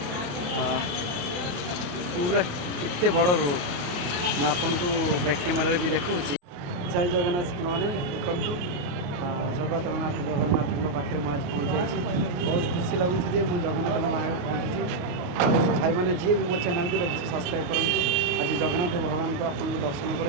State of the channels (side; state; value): left; late; 28 ms